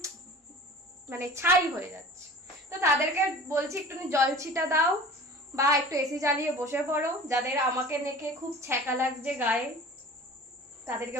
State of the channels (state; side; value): normal; both; correlation 0.41